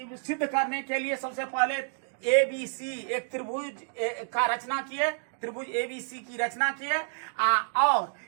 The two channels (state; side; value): silent; left; digital silence